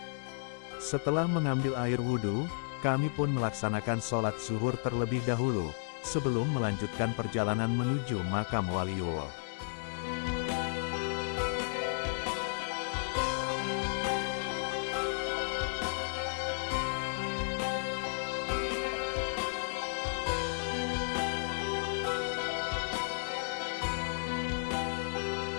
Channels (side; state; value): right; silent; digital silence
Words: Setelah mengambil air wudhu, kami pun melaksanakan sholat zuhur terlebih dahulu, sebelum melanjutkan perjalanan menuju makam Waliullah.